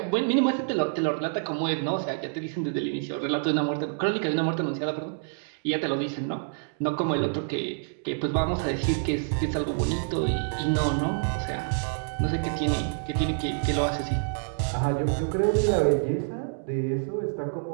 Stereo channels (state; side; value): silent; left; digital silence